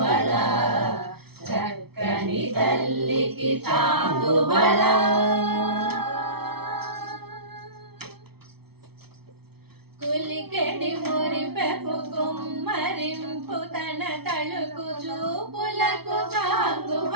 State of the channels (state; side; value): late; left; 0.96 ms